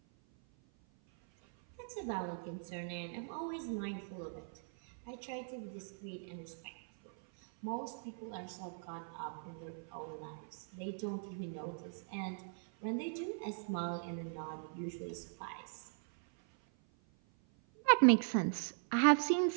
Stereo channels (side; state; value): left; silent; 51 dB below the other